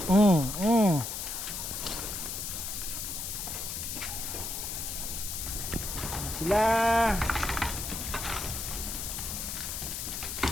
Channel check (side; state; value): left; noise; hiss, 5 dB below the sound